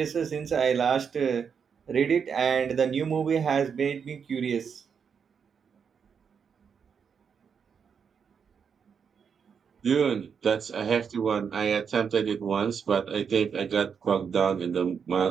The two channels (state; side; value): quieter; left; 6.7 dB